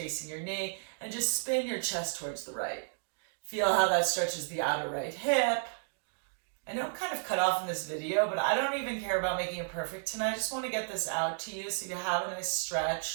your knee and just spin your chest towards the right. Feel how that stretches the outer right hip. I know I'm kind of cut off in this video, but I don't even care about making it perfect tonight. I just want to get this out to you so you have a nice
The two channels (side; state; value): left; silent; digital silence